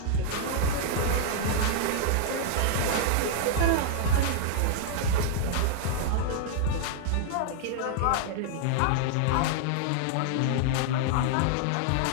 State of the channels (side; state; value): both; different; correlation -0.01